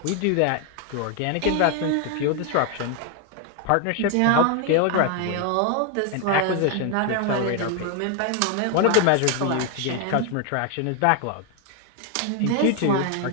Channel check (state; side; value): different; both; correlation 0.01